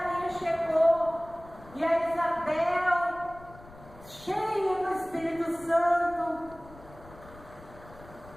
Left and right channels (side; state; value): left; noise; rumble, 20 dB below the sound